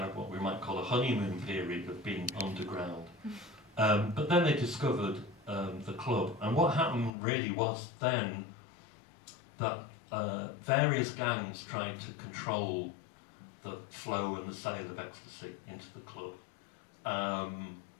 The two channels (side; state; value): right; drops out; at 7.1 s